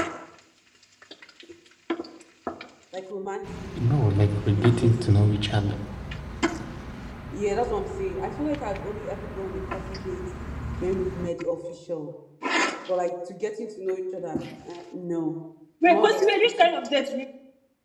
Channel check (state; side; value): identical; both; correlation 1.00